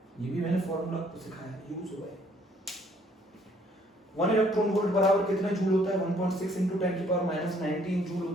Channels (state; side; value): normal; both; correlation 0.63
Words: ये भी मैंने फॉर्मूला आपको सिखाया, यूज हुआ है। 1 इलेक्ट्रॉन वोल्ट बराबर कितना जूल होता है? 1.6 × 10⁻19 जूल